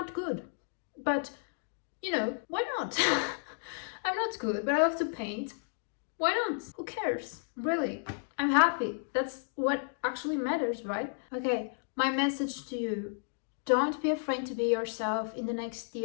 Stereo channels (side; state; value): right; silent; digital silence